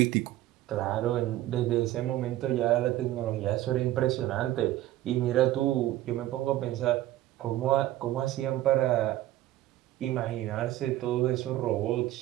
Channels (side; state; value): left; quieter; 14.9 dB